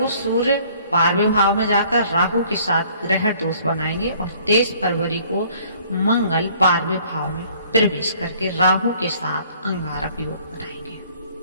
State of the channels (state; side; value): inverted; both; correlation -0.57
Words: सूर्य 12वें भाव में जाकर राहु के साथ ग्रह दोष बनाएंगे और 23 फरवरी को मंगल 12वें भाव में प्रवेश करके राहु के साथ अंगारक योग बनाएंगे।